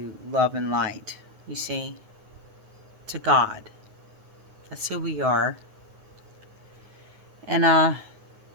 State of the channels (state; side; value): late; left; 9.5 ms